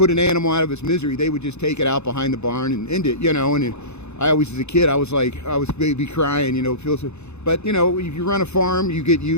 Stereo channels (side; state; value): right; late; 0.81 ms